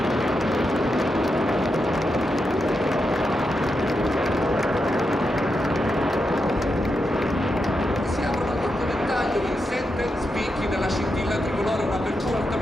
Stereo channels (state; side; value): normal; both; correlation 0.86